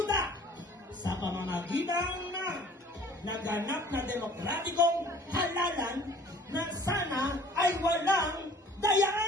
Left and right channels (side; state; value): both; normal; correlation 0.50